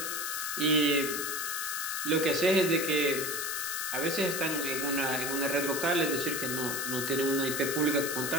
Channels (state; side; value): noise; left; hiss, 3 dB below the sound